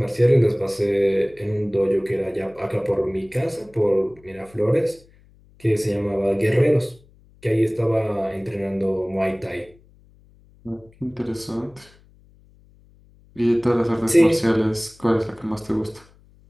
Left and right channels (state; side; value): noise; left; hum, 28 dB below the sound